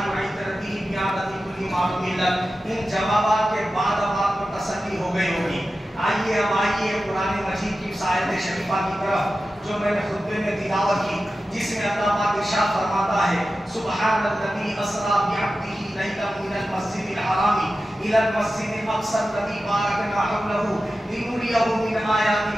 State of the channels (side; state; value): both; normal; correlation 0.93